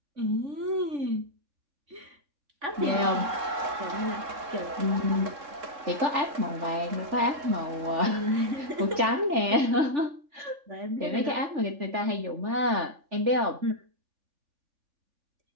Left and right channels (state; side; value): late; left; 3.4 ms